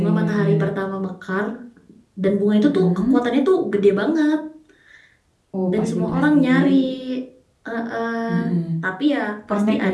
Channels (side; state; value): both; identical; correlation 1.00